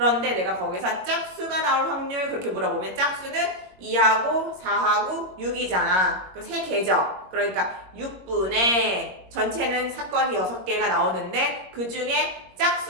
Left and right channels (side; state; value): left; late; 21 ms